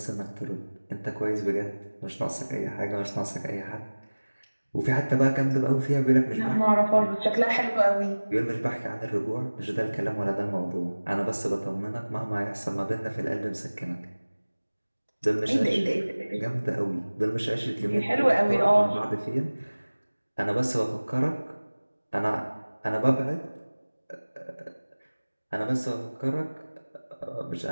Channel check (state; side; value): inverted; both; correlation -1.00